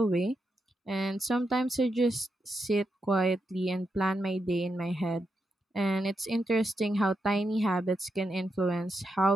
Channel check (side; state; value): both; normal; correlation 0.85